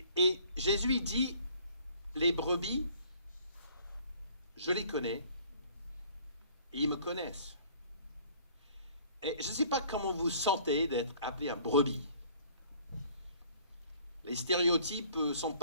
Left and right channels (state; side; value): inverted; both; correlation -0.54